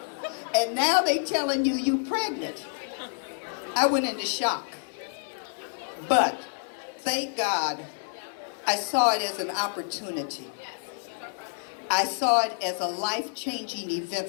and now they telling you you pregnant. I went into shock. But thank God, I saw it as an opportunity. I saw it as a life-changing event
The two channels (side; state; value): right; silent; digital silence